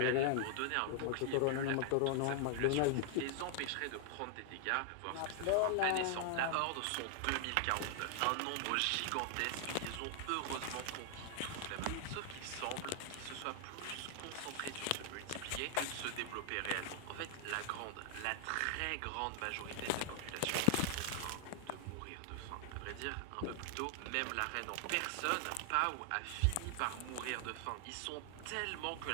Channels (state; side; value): different; both; correlation 0.00